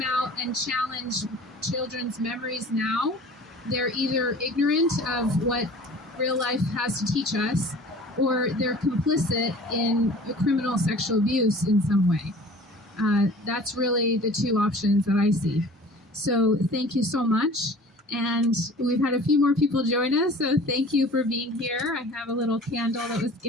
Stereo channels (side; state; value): both; normal; correlation 0.44